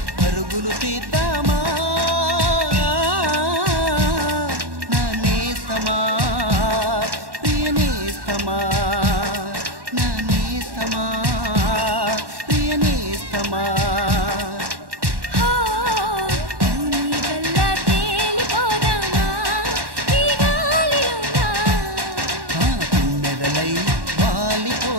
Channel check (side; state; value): left; late; 1.1 ms